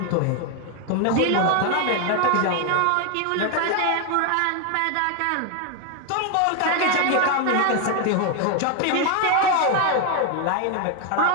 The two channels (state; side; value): different; both; correlation 0.01